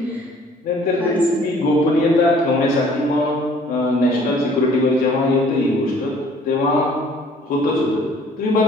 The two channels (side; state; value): both; normal; correlation 0.56